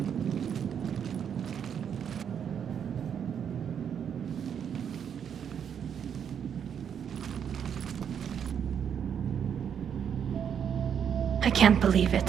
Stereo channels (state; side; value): quieter; left; 8.1 dB